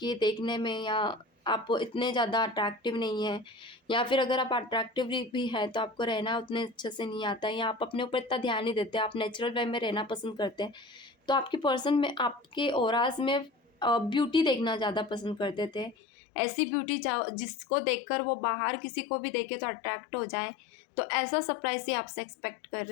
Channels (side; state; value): right; drops out; at 16.0 s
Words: देखने में या आप इतने ज़्यादा अट्रैक्टिव नहीं हैं, या फिर अगर आप अट्रैक्टिव भी हैं तो आपको रहना उतने अच्छे से नहीं आता है, या आप अपने ऊपर इतना ध्यान नहीं देते, आप नेचुरल वे में रहना पसंद करते हैं। तो आपकी पर्सन में, आपके ऑराज में ब्यूटी देखना ज़्यादा पसंद करते थे, ऐसी ब्यूटी जिसको देखकर वो बाहर किसी को भी देखे तो अट्रैक्ट हो जाए। तो ऐसा सरप्राइज ही आपसे एक्सपेक्ट कर